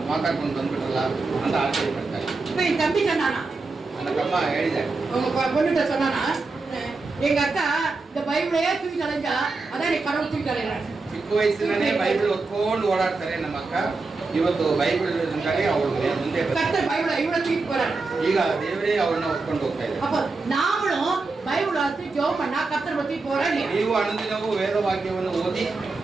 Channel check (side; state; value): left; quieter; 3.8 dB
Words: ಮಾತಾಡ್ಕೊಂಡು ಬಂದ್ಬಿಟ್ರಲ್ಲ ಅಂತ ಆಶ್ಚರ್ಯ ಪಡ್ತಾರೆ. இப்ப என் தம்பி சொன்னானா, ನನ್ನ ತಮ್ಮ ಹೇಳಿದ್ದಾರೆ, உங்க பொண்ணுகிட்ட சொன்னானா, எங்க அக்கா இந்த பைபிளையே தூக்கி தலைஞ்சா அதான் நீ கடவுள் தூக்கி தலைறாங்க. ಚಿಕ್ಕ ವಯಸ್ಸಿನಲ್ಲೇ ಬೈಬಲ್ ಹೊತ್ಕೊಂಡು ಓಡಾಡ್ತಾರೆ ನಮ್ಮ ಅಕ್ಕ. ಇವತ್ತು ಬೈಬಲ್ ಅವಳು ಮುಂದೆ கர்த்தர் பைபிளை இவ்வளவு தூக்கி போறாரு. ಈಗ ದೇವರೇ ಅವ್ರನ್ನ ಹೊತ್ಕೊಂಡು ಹೋಗ್ತಾ ಇದ್ದಾರೆ. அப்ப நாமளும் பைபிள் வாசி ஜெபம் பண்ணா கர்த்தர் பத்தி போறாரு. ನೀವು ಅನುದಿನವೂ ವೇದವಾಕ್ಯವನ್ನು ಓದಿ